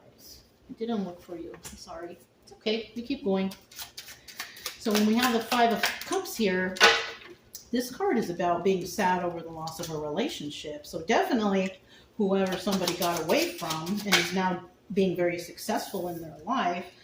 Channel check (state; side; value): identical; both; correlation 1.00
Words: I didn't look for you. I'm sorry. It's okay. We keep going. So when we have the Five of Cups here, this card is about being sad over the loss of a relationship. So definitely whoever somebody got away from and is now being very successful in their life